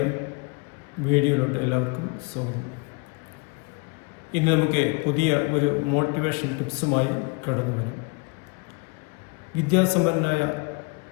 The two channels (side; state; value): right; quieter; 31.0 dB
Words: വീഡിയോയിലോട്ട് എല്ലാവർക്കും സ്വാഗതം. ഇന്ന് നമുക്ക് പുതിയ ഒരു മോട്ടിവേഷൻ ടിപ്സുമായി കടന്നു വരാം. വിദ്യാസമ്പന്നനായ